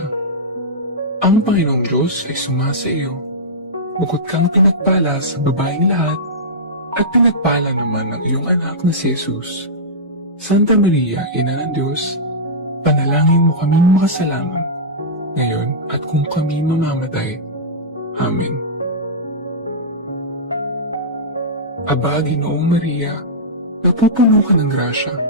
Ang Panginoong Diyos ay sumasa iyo. Bukod kang pinagpala sa babaeng lahat, at pinagpala naman ang iyong anak na si Jesus. Santa Maria, Ina ng Diyos, panalangin mo kaming makasalanan, ngayon at kung kami mamamatay. Amen. Aba, Ginoong Maria, napupuno ka ng grasya.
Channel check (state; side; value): normal; both; correlation -0.13